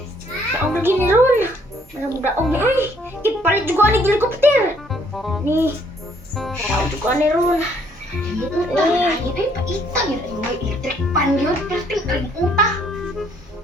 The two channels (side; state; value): both; normal; correlation 0.65